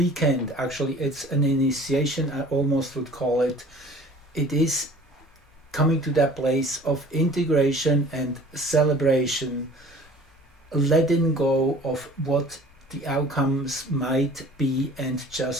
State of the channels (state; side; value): normal; both; correlation 0.47